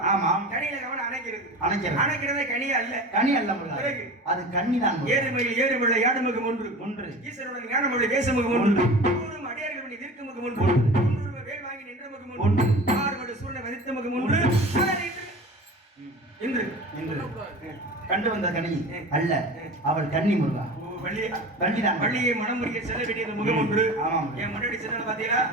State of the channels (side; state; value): both; normal; correlation 0.35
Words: ஆமா. கனியில காம்பு அணைக்கிறது கனி அல்ல. கனி அல்ல முருகா, அது கன்னி தான். ஏறுமையில் ஏறுமுள்ள யாடுமுகம் ஒன்று ஈஸ்வரனுடைய ஞானமுடைய தேசமுகம் ஒன்று ஊரும் அடியார்களுடைய தீர்க்கமுகம் ஒன்று வேல் வாங்கி நின்ற முகம் ஒன்று ஆறுமடு சூரியனை வதித்த முகம் ஒன்று இன்று கண்டு வந்த கனி அல்ல, அவள் கன்னி முருகா. வள்ளியை மனம் முடிக்க செல்ல வேண்டிய முகம் ஒன்று. என் முன்னாடி செல்ல பாத்தீங்களா?